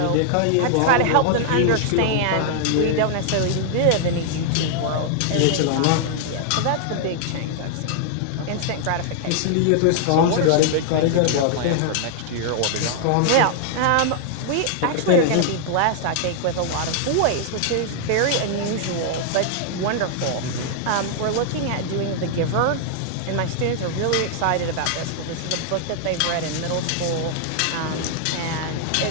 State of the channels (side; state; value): both; different; correlation -0.01